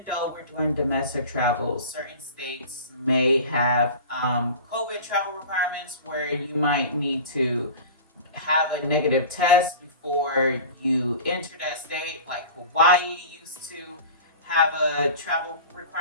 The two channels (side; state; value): both; inverted; correlation -0.36